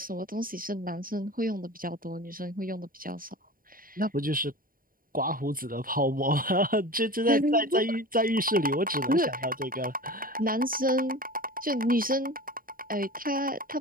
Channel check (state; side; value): late; left; 0.41 ms